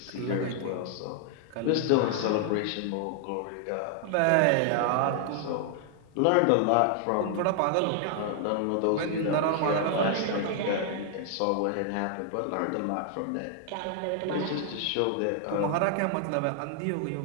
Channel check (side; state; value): both; different; correlation 0.00